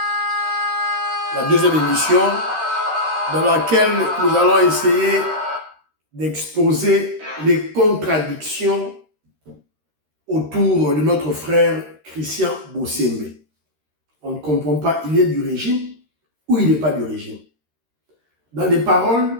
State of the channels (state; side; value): late; left; 13 ms